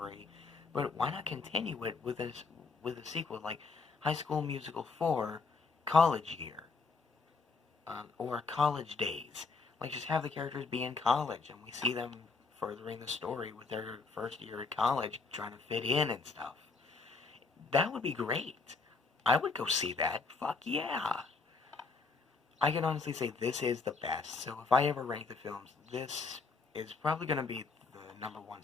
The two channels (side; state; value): right; quieter; 4.4 dB